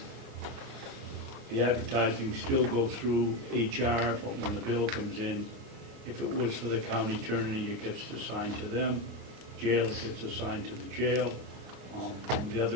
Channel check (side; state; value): left; late; 29 ms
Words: the advertising still go through HR, but when the bill comes in, if it was for the county attorney, it gets assigned to them. Jail, it gets assigned to the jail. The other